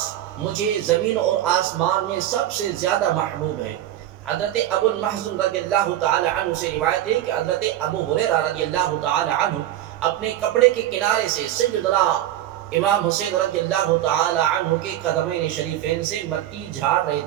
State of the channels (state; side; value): quieter; left; 12.8 dB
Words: مجھے زمین اور آسمان میں سب سے زیادہ محبوب ہے۔ حضرت ابو المحزن رضی اللہ تعالی عنہ سے روایت ہے کہ حضرت ابو ہریرہ رضی اللہ تعالی عنہ اپنے کپڑے کے کنارے سے سیدنا امام حسین رضی اللہ تعالی عنہ کے قدمین شریفین سے مٹی جھاڑ رہے